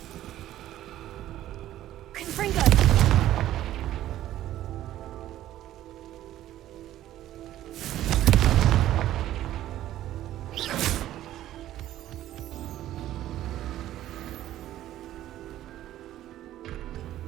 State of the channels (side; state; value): left; quieter; 13.4 dB